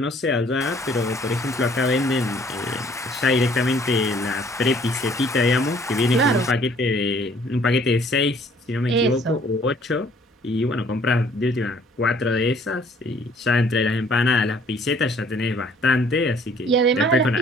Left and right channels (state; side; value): normal; both; correlation 0.59